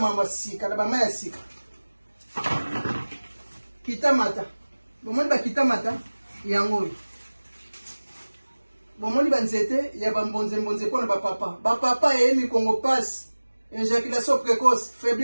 mambo ya sika na bama ya sika kitamata bomoni bakitamata yango oyo bomoni banzete ya bambonze mpona bapapa eye mikongo pasi éjaculation précoce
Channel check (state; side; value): inverted; both; correlation -1.00